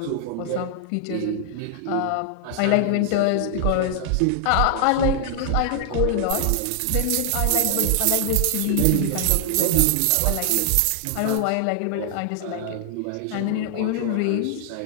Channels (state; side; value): different; both; correlation 0.00